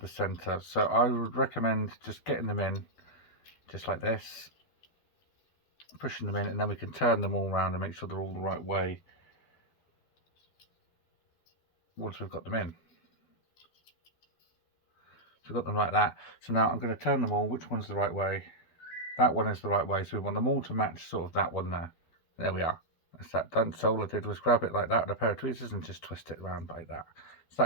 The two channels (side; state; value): right; late; 12 ms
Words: center. So I would recommend just getting them in, just like this. Pushing them in, and then we can turn them all around and make sure they're all the right way once we've got them in. So we've got them like that. So now I'm going to turn them all. Which one's the right way? That one is the right way. So we want them all to match sort of that one there. There we are. That's that done. So all I did was grab it like that with a pair of tweezers and just twist it around like that. So